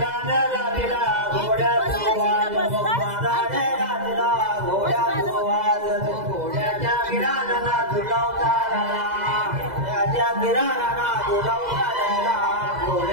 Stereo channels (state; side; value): late; left; 2.0 ms